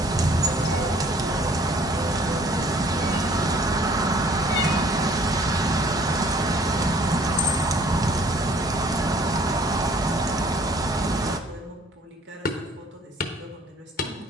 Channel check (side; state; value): both; normal; correlation 0.56